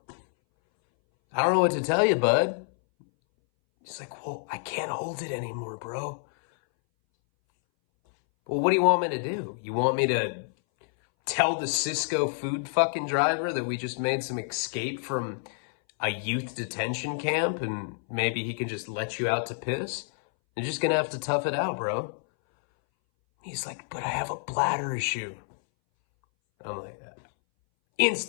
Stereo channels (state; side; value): silent; right; 59 dB below the other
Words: I don't know what to tell you, bud. He's like, well, I can't hold it anymore, bro. Well, what do you want me to do? You want me to tell the Cisco food fucking driver that we just made some escape from a youth detention camp and maybe he can just let you out to piss? You're just gonna have to tough it out, bro. He's like, but I have a bladder issue. I'm like,